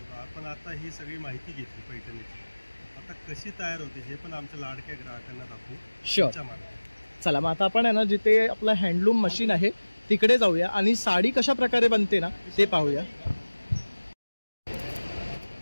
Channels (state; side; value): inverted; both; correlation -1.00